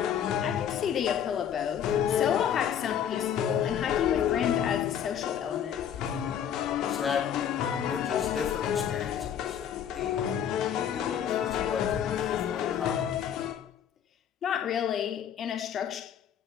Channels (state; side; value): quieter; right; 9.1 dB